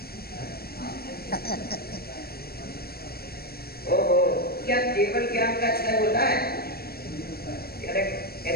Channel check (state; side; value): late; right; 0.45 ms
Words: ओहो, क्या केवल ज्ञान का क्षय होता है?